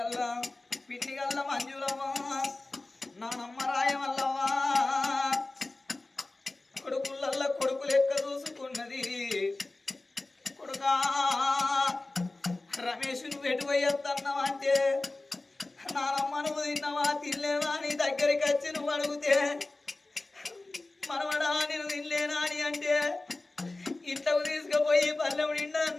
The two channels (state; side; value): quieter; right; 3.1 dB